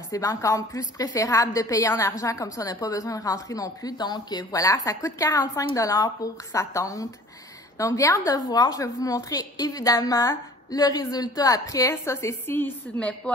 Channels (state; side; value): normal; both; correlation 0.48